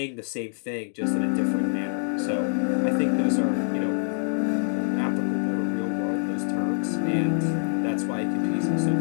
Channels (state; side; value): silent; right; digital silence